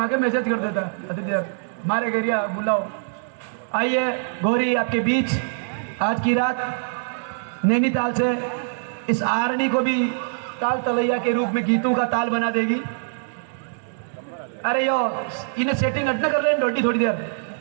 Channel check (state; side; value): silent; left; digital silence